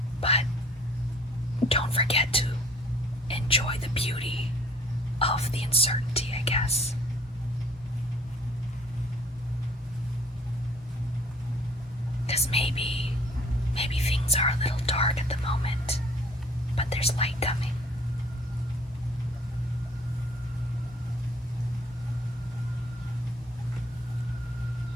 But because maybe things are a little dark at the moment, but there's light coming.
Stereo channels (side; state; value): both; normal; correlation 0.56